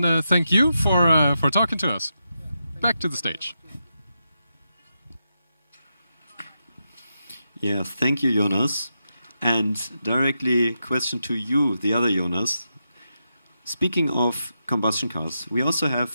thank you for talking to us. Back to the stage. Yeah, thank you, Jonas. And directly question to you, the other Jonas. Speaking of combustion cars, we also have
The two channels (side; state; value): both; inverted; correlation -0.86